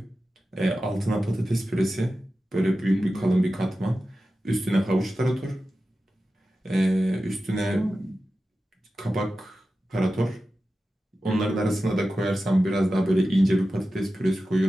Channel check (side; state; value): both; normal; correlation 0.93